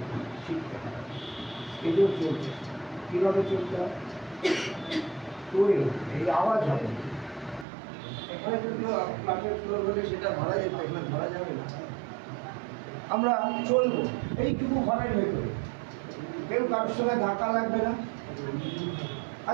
শিখতে হবে, স্টেজেও চলছে কীভাবে চলতে হয় তৈরি এই আওয়াজ হবে। এখানে যদি ক্লাসের ফ্লোর হলে সেটা ধরা যেত, এখানে ধরা যাবে না। আমরা চলবো এইটুকু ঘরের ভেতরে, কেউ কারোর সঙ্গে ধাক্কা লাগবে না।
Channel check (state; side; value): drops out; left; at 7.7 s